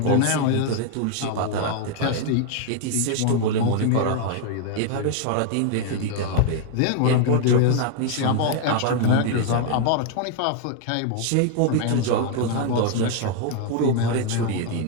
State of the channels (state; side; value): different; both; correlation 0.00